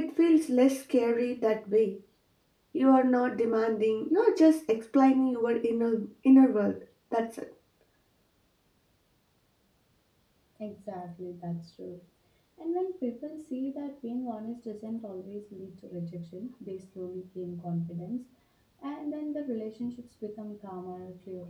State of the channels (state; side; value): identical; both; correlation 1.00